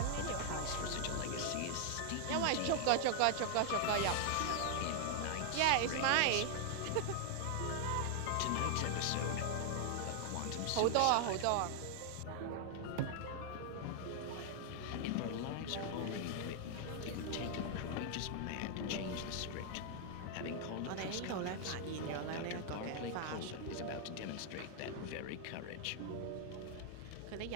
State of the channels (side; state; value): both; different; correlation 0.00